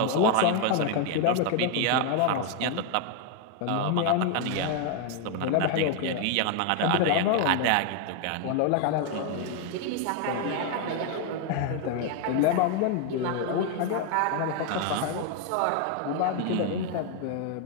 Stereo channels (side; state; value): both; different; correlation 0.01